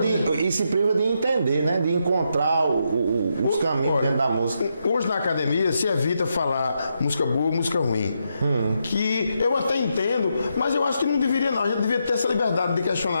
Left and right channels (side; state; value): both; inverted; correlation -0.82